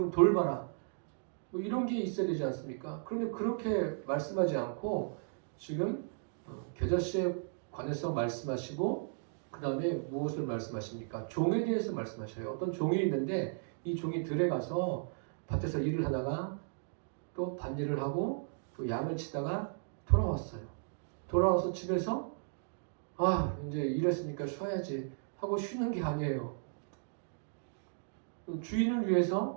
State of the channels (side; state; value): left; silent; digital silence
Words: 돌봐라. 이런 게 있어야 되지 않습니까? 그런데 그렇게 말씀하지 않고 지금 겨자씨에 관해서 말씀하시고 그 다음에 무엇을 말씀하십니까? 종에 대해서 말씀하셔요. 어떤 종이 있는데 이 종이 들에 가서 밭에서 일을 하다가 또 밭일을 하고 또 양을 치다가 돌아왔어요. 돌아와서 집에서 이제 일했으니까 쉬어야지 하고 쉬는 게 아니에요. 주인을